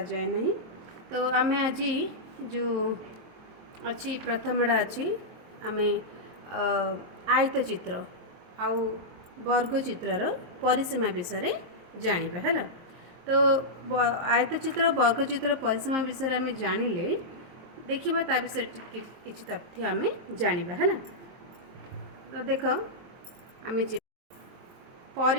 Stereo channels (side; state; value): left; late; 23 ms